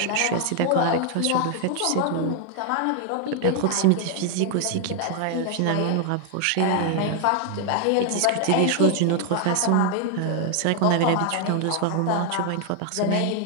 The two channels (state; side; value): different; both; correlation 0.00